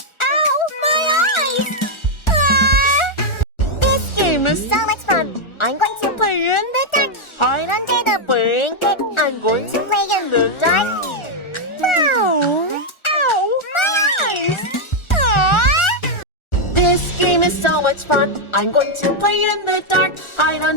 Ow! My eyes! This game is so much fun. I'm going to play in the dark, hide under the blanket. I'm going to play in the dark. Wow! Ow! My eyes! This game is so much fun. I'm going to play in the dark, hide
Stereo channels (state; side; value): late; right; 1.4 ms